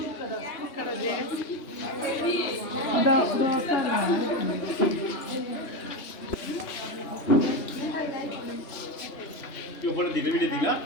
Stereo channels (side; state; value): right; late; 3.2 ms